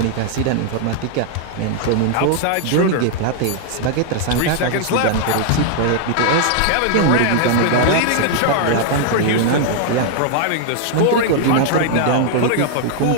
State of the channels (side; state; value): both; different; correlation 0.00